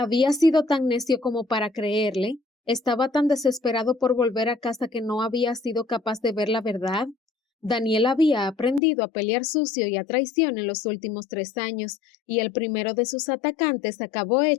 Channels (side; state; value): right; drops out; at 8.8 s